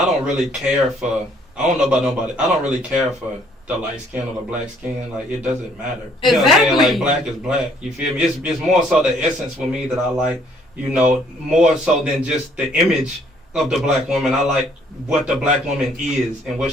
don't really care for, I don't know about nobody, I don't really care for the light skin or the black skin. Like, it doesn't matter. You know what I'm saying? Like, black is black. You feel me? It's more so the essence for me that I like, more so than just the image of the black woman. I like what the black woman is and what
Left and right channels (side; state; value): both; normal; correlation 0.63